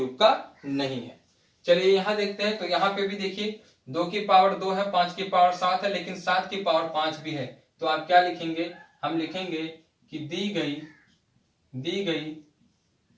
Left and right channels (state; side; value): identical; both; correlation 1.00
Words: का नहीं है। चलिए यहां देखते हैं। तो यहाँ पे भी देखिए 2 की पावर 2 है, 5 की पावर 7 है, लेकिन 7 की पावर 5 भी है। तो आप क्या लिखेंगे? हम लिखेंगे कि दी गई